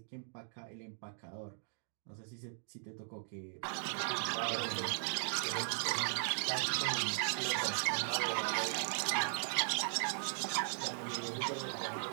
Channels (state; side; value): silent; left; digital silence